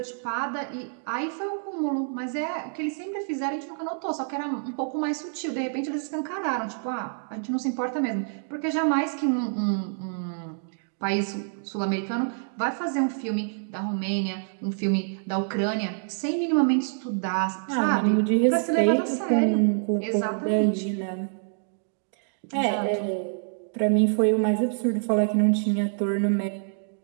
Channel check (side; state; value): left; silent; digital silence